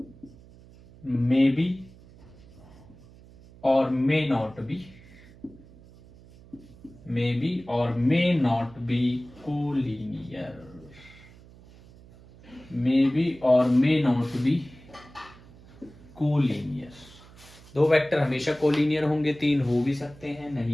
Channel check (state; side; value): noise; right; hum, 22 dB below the sound